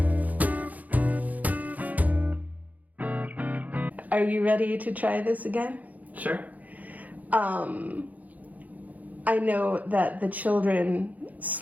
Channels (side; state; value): left; late; 0.078 ms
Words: Are you ready to try this again? Sure. I know that the children